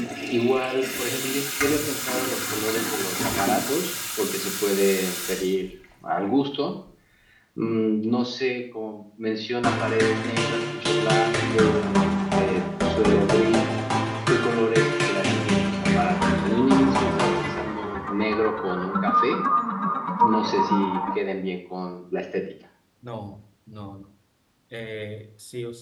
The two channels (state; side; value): identical; both; correlation 1.00